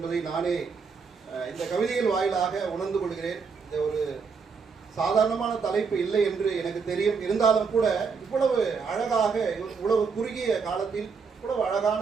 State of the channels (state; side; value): quieter; left; 5.4 dB